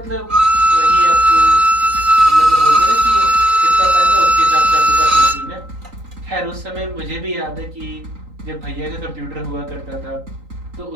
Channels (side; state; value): left; late; 3.9 ms